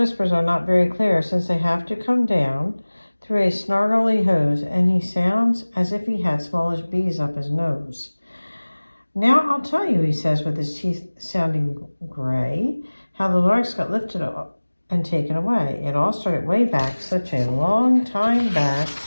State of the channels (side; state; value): both; inverted; correlation -1.00